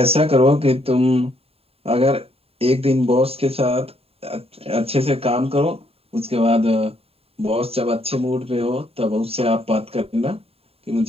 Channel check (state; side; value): late; left; 0.28 ms